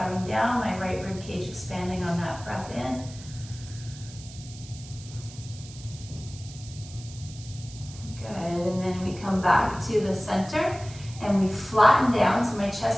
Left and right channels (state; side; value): noise; right; hiss, 17 dB below the sound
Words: down, my right rib cage expanding on that breath in. Good, and then we come back to the center and we flatten down, so my